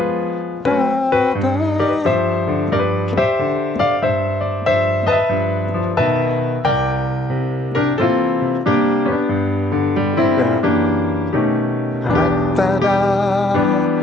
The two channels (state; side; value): normal; both; correlation 0.66